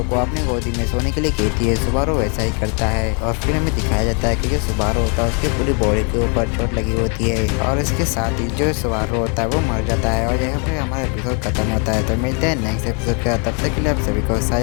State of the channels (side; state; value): right; quieter; 37.0 dB